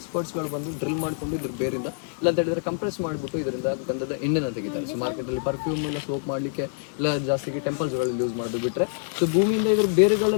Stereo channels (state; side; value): silent; right; digital silence